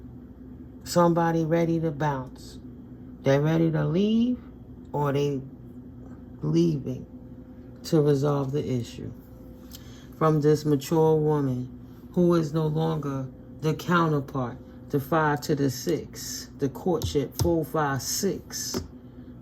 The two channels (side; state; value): both; identical; correlation 1.00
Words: Somebody ready to bounce. They're ready to leave, or they leaving to resolve the issue. From this mature woman who is no longer the counterpart, the 5 to the 6, the courtship 4, 5, 6